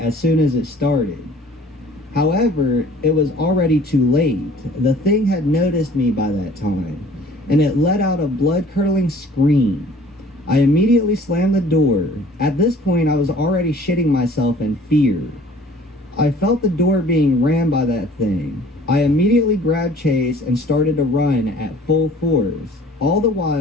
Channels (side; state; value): both; normal; correlation 0.51